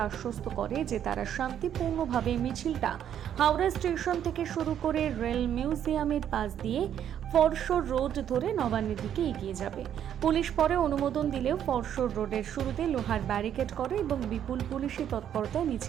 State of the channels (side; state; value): left; quieter; 9.8 dB